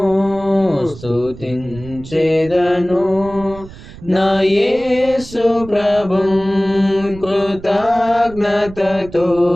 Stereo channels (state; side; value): noise; right; rumble, 17 dB below the sound